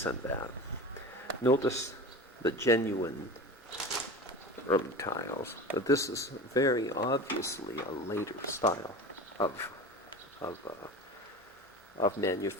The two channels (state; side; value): normal; both; correlation 0.32